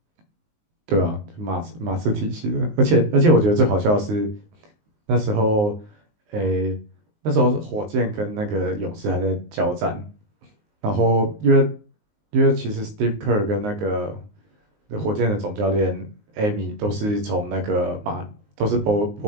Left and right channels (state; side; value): late; left; 19 ms